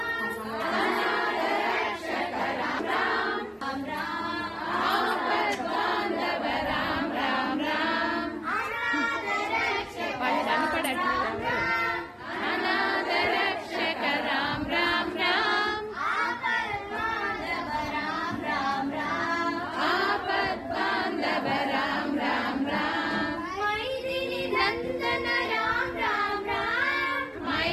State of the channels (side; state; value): both; identical; correlation 1.00